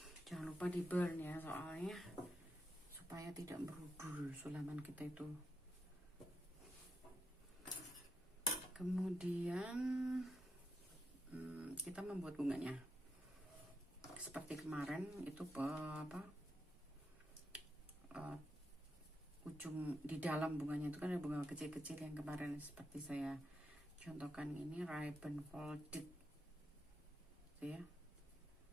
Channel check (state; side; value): normal; both; correlation 0.85